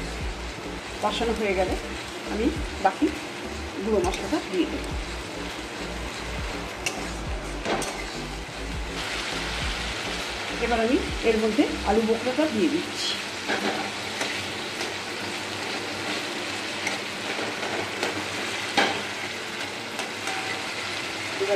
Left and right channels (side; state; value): both; identical; correlation 1.00